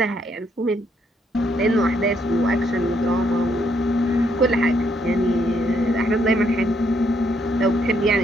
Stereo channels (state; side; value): normal; both; correlation 0.73